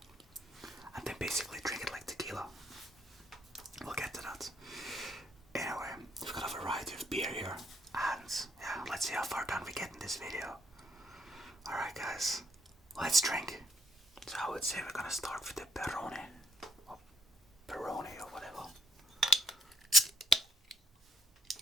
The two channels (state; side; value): normal; both; correlation 0.73